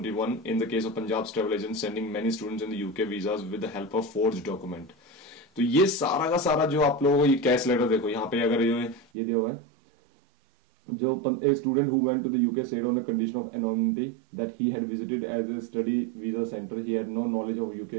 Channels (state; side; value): drops out; left; at 9.1 s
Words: in the case of Punjab's travel agents sending many students in the UK visas with the help of forged document। तो ये सारा का सारा जो आप लोगों को ये कैश लेटर देखो यहाँ पे, अगर ये दिया हुआ है, जो a student who went to the UK said on a condition of anonymity that he had visited as a study visa center. He had no knowledge of UK